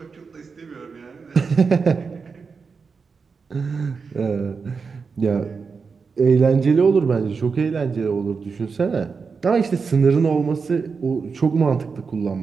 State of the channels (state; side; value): quieter; left; 5.1 dB